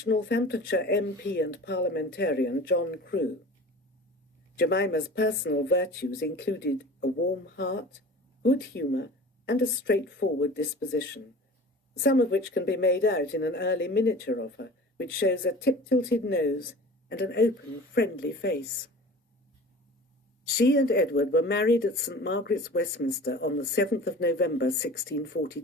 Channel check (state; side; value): normal; both; correlation 0.40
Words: Northamptonshire MP and parliamentarian, John Crewe. Jemima's personal virtues included a warm heart, good humour, and a straightforward disposition, some of which can be made out in an early miniature of her, which shows a tip-tilted nose and an open, friendly face. She and Edward were married at St. Margaret's, Westminster, on the 7th of November,